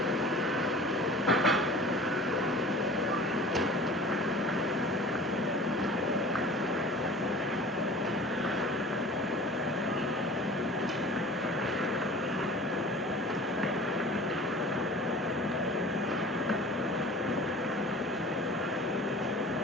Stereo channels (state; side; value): normal; both; correlation 0.42